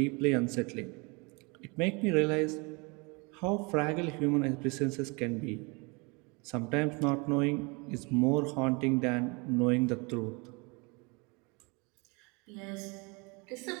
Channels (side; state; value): left; quieter; 29.4 dB